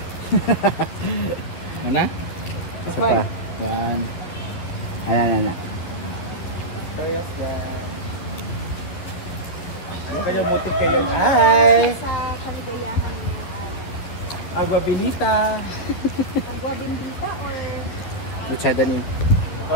Mana? Isa pa. Yan. Ayan. Kaya mo kayo. Hi! Sa kaligayahan ng araw. Agua Benita. Agua bendita or Luchada ni.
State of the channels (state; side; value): late; right; 12 ms